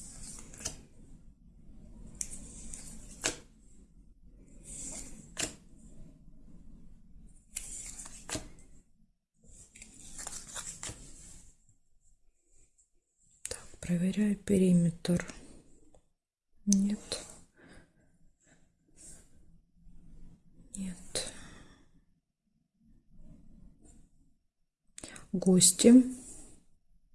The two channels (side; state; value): both; identical; correlation 1.00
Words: Так, проверяю периметр. Нет. Нет. Гости.